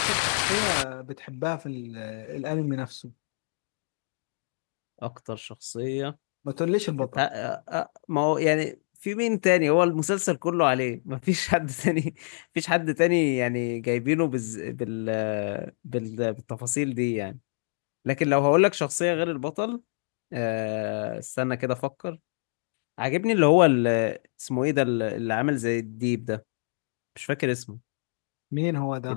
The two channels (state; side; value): silent; right; digital silence